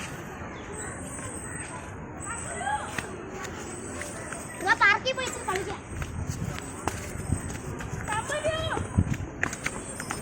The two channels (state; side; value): identical; both; correlation 1.00